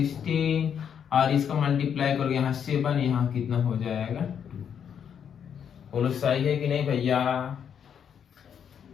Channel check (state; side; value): quieter; right; 8.1 dB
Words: और इसका मल्टीप्लाई करोगे यहाँ 7, यहाँ कितना हो जाएगा 2। बोलो सही है कि नहीं भैया?